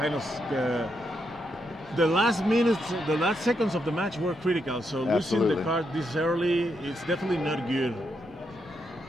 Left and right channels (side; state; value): both; normal; correlation 0.81